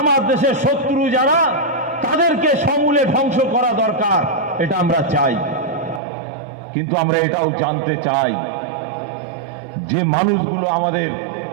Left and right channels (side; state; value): left; drops out; at 6.0 s